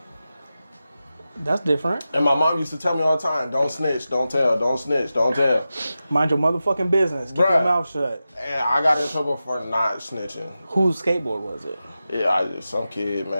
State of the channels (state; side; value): inverted; both; correlation -0.93